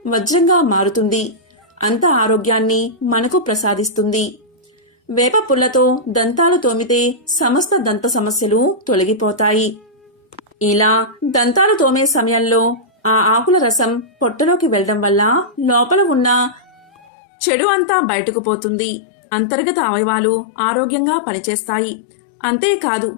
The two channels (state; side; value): drops out; right; at 17.1 s